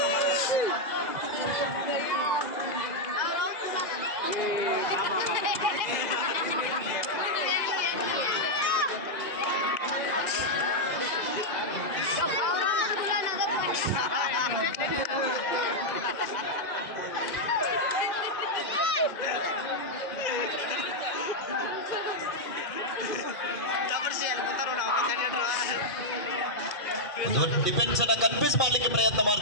ಡಿಫೆನ್ಸ್ ಅನ್ನ ಕನ್ಫ್ಯೂಸ್ ಮಾಡ್ಲಿಕ್ಕೆ ಪ್ರಯತ್ನ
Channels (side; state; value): right; late; 2.0 ms